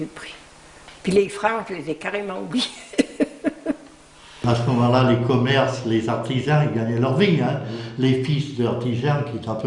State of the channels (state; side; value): identical; both; correlation 1.00